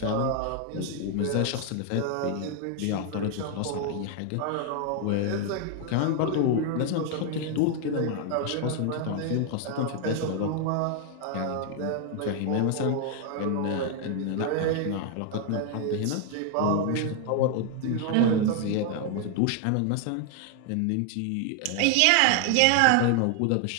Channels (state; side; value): different; both; correlation 0.00